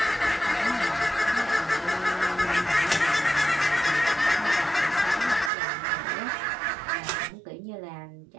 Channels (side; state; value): left; drops out; at 5.5 s